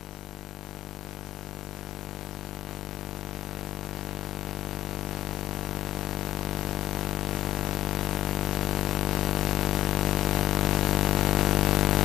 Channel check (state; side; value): quieter; right; 13.1 dB